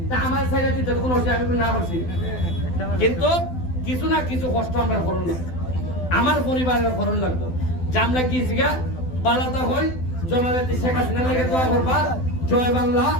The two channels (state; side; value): late; right; 12 ms